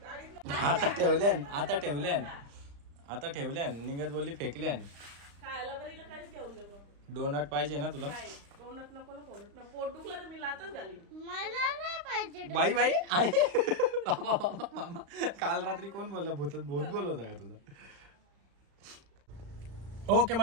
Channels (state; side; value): late; left; 35 ms